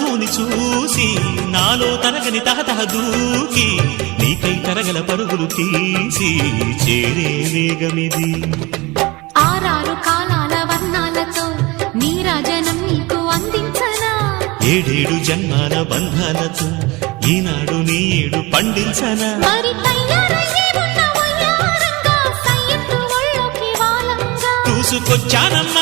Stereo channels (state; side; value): quieter; left; 23.4 dB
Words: చూసి నాలో తరగని తహతహ దూకి నీకై తరగల పరుగులు తీసి చేరే వేగమిది. ఆరారు కాలాల వర్ణాలతో నీరాజనం నీకు అందించనా, ఏడేడు జన్మాల బంధాలతో ఈనాడు నీ ఏడు పండించనా. మరి తయారయ్యే ఉన్న వయ్యారంగా సయ్యత్తు ఒళ్ళోకి వాలంగా